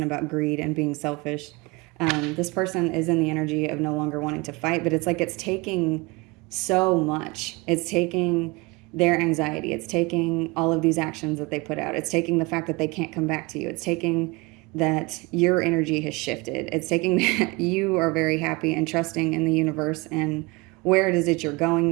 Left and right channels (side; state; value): left; quieter; 25.1 dB